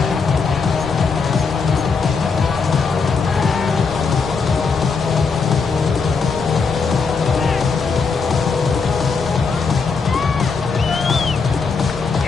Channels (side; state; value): right; quieter; 5.0 dB